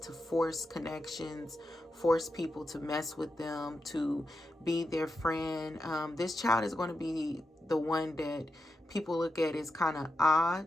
force connections, force people to mess with them, to be their friend. This child is going to be the one that people look at as kind of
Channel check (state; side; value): normal; both; correlation 0.88